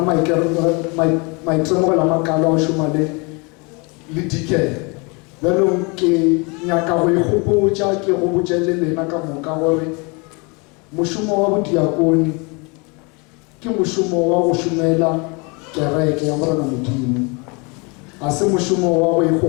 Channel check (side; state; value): right; quieter; 30.3 dB